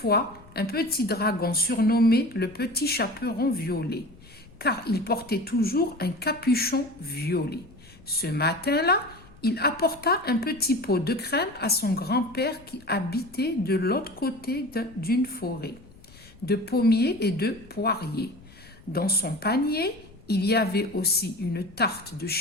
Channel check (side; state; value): left; noise; rumble, 24 dB below the sound